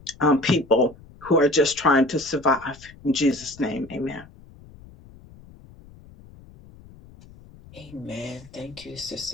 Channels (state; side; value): noise; left; rumble, 22 dB below the sound